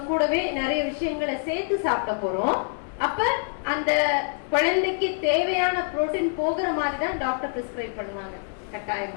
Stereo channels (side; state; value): right; silent; 59 dB below the other